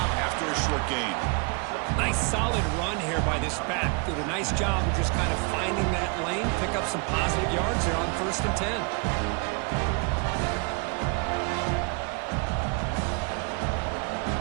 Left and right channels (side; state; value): left; quieter; 32.3 dB